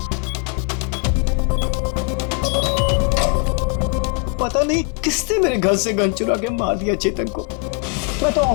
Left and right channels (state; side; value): quieter; right; 36.3 dB